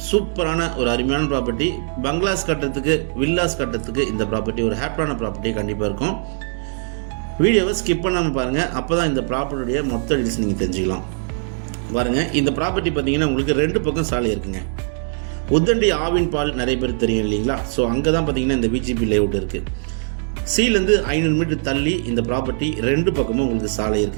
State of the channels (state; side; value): silent; left; digital silence